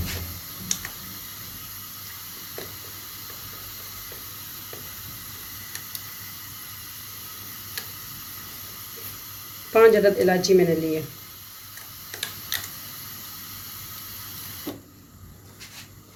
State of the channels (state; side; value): identical; both; correlation 1.00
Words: पाँच अदद इलायची मैंने ली है।